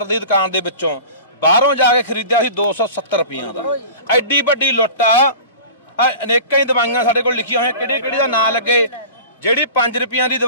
ਦੀ ਦੁਕਾਨ ਦੇ ਵਿੱਚੋਂ, ਬਾਹਰੋਂ ਜਾ ਕੇ ਖਰੀਦਿਆ ਸੀ 270 ਰੁਪਈਆਂ ਦਾ। ਐਡੀ ਵੱਡੀ ਲੁੱਟ ਆ। ਅਨੇਕਾਂ ਹੀ ਦਵਾਈਆਂ ਸਾਡੇ ਕੋਲ ਲਿਖੀਆਂ ਹੋਈਆਂ, ਕਿਹੜੀ ਦਾ ਨਾਂ ਲੱਗੇ। ਜਿਹੜੀ 5 ਰੁਪਈਆਂ ਦੀ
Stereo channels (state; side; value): inverted; both; correlation -0.38